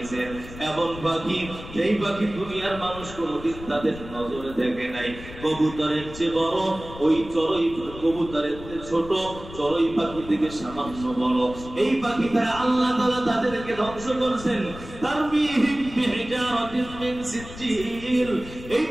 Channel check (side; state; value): left; noise; rumble, 14 dB below the sound